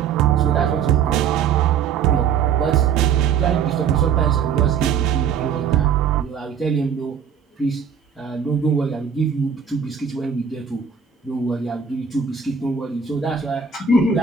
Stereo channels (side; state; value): left; quieter; 7.1 dB